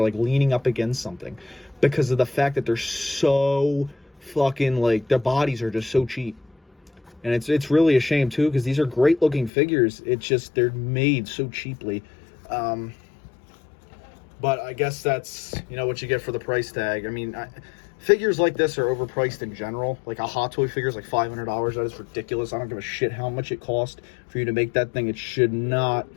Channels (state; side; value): drops out; right; at 9.5 s